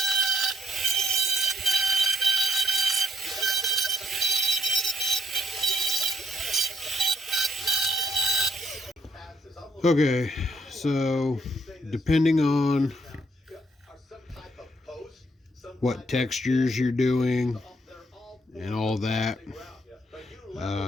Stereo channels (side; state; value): both; normal; correlation 0.72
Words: Okay, so depending on what textures you're doing and all that,